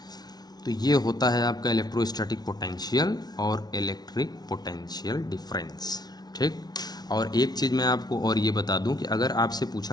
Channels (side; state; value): right; late; 0.19 ms